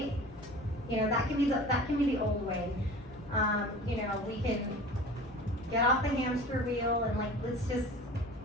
That can be the old way. We can get off the hamster wheel and like, let's just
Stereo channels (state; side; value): normal; both; correlation 0.40